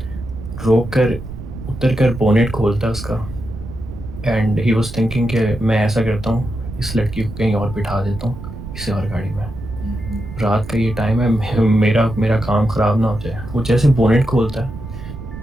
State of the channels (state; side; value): noise; right; rumble, 11 dB below the sound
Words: रोक कर उतर कर बोनेट खोलता है उसका। एंड ही वॉज थिंकिंग कि मैं ऐसा करता हूँ, इस लड़की को कहीं और बिठा देता हूँ किसी और गाड़ी में, रात का ये टाइम है, मेरा काम ख़राब ना हो जाए। वो जैसे बोनेट खोलता है